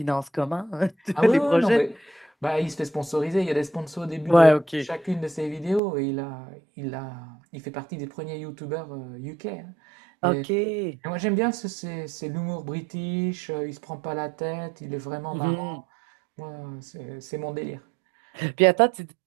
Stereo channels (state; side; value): drops out; left; at 5.8 s